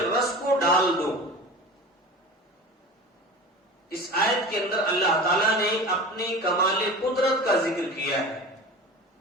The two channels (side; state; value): both; normal; correlation 0.35